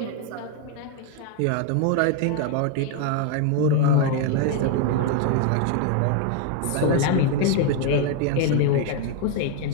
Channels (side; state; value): both; different; correlation 0.01